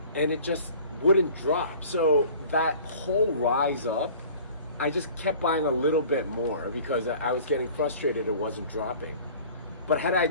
and it just wouldn't drop. So that whole rise up, I just kept buying a little bit more because I was getting frustrated it wasn't dropping. But had I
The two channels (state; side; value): inverted; both; correlation -0.46